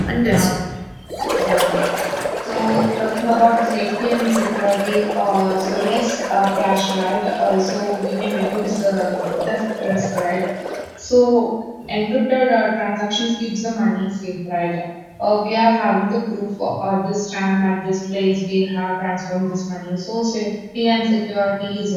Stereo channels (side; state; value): both; identical; correlation 1.00